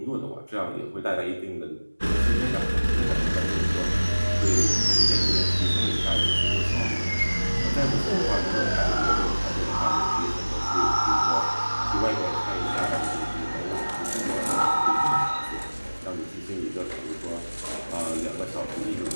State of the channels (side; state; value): both; inverted; correlation -1.00